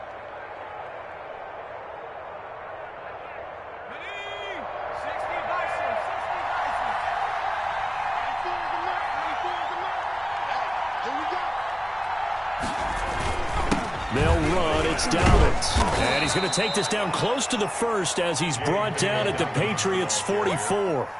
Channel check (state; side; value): identical; both; correlation 1.00